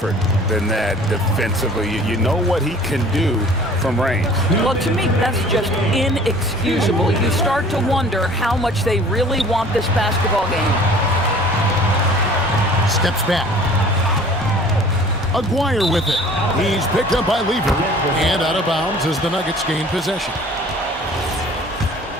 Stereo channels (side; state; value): both; normal; correlation 0.49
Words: than that defensively. You know what he can do from range. Well, to me, that's just inexcusable. You start to wonder how much they really want this basketball game. Steps back. Aguirre with it. He's picked up by Lever. And out of bounds as the Nuggets gain possession.